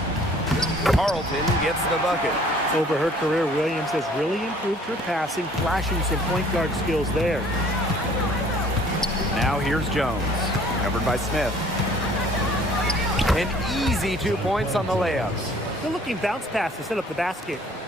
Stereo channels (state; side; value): normal; both; correlation 0.55